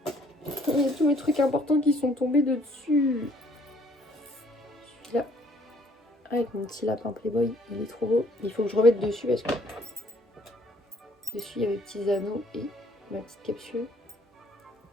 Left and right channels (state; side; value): normal; both; correlation 0.62